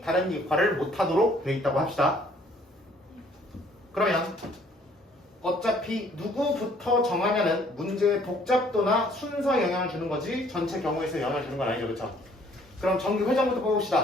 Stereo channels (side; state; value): both; normal; correlation 0.60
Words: 다른 역할을 못하도록 되어 있다고 합시다. 그러면 어차피 누구부터 정하냐는 문제의 복잡도나 순서에 영향을 주는 거지 전체 경우에 서 영향을 주는 건 아니죠, 그렇죠? 그럼 정규 회장부터